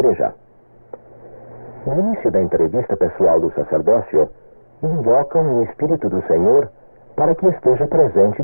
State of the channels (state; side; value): inverted; both; correlation -1.00